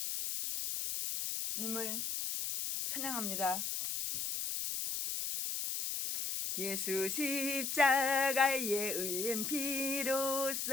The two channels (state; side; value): noise; left; hiss, 2 dB below the sound